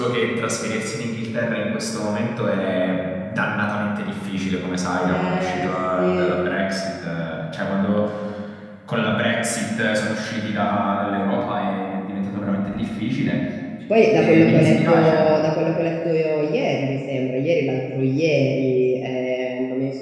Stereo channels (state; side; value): identical; both; correlation 1.00